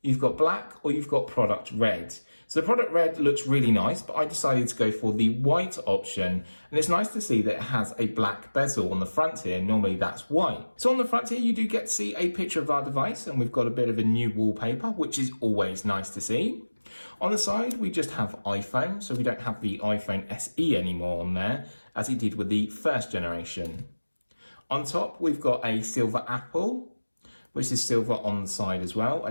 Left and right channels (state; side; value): inverted; both; correlation -1.00